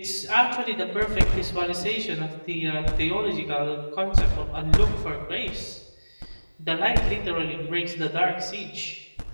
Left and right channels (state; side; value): inverted; both; correlation -1.00